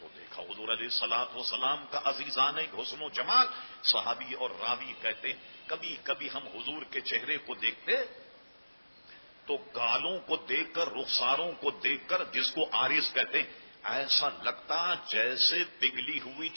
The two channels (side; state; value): both; inverted; correlation -1.00